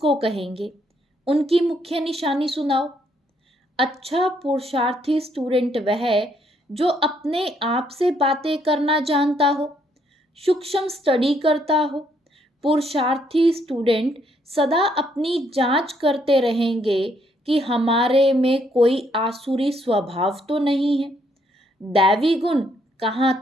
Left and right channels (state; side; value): normal; both; correlation 0.71